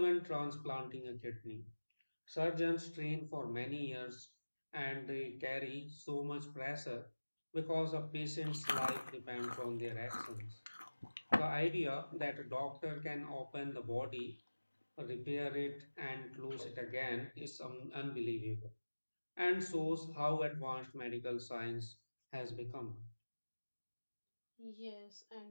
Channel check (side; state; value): both; inverted; correlation -1.00